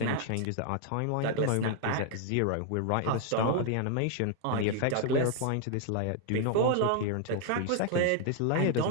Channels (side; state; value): both; different; correlation 0.00